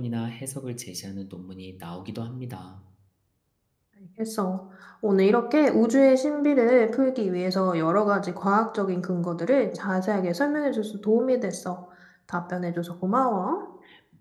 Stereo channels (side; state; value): both; identical; correlation 1.00